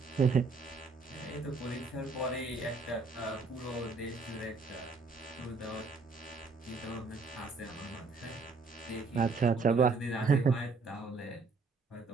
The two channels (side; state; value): left; quieter; 4.1 dB